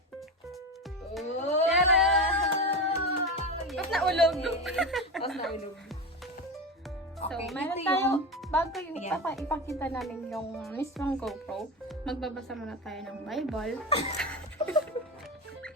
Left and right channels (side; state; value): both; normal; correlation 0.21